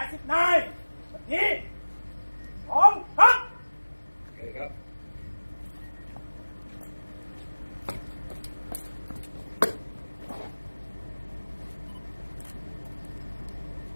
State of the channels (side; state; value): both; inverted; correlation -1.00